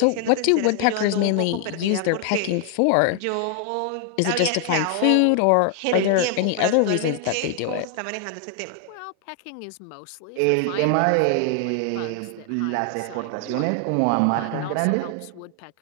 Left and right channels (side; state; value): both; different; correlation 0.00